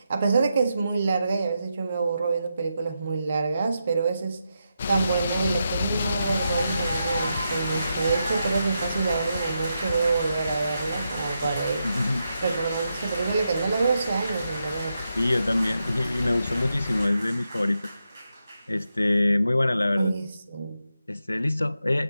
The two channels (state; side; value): inverted; both; correlation -0.86